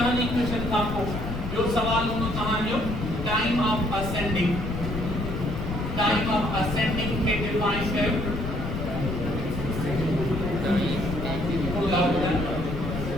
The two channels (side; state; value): left; noise; rumble, 5 dB below the sound